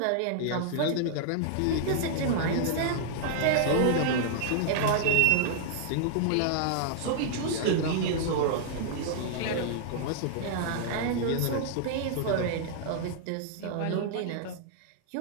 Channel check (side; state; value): both; different; correlation -0.01